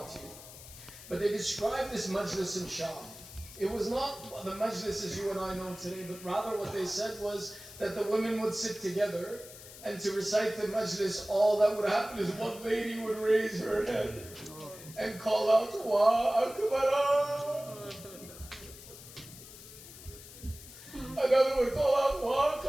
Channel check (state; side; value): noise; left; hiss, 16 dB below the sound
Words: you. But they described this Majlis in Sham. It was not the Majlis as you and I know today, but rather what they said was that the women would sit together, and to recite the Majlis, all that would happen is one lady would raise her head and call out, Wa Akbar. Another would call out, Wa